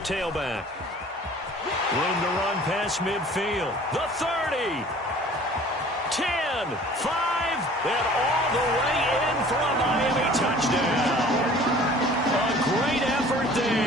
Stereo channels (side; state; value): both; normal; correlation 0.48